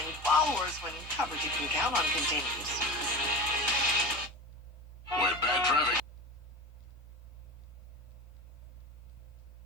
followers when coverage you can count on continues. When bad traffic.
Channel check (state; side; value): normal; both; correlation 0.29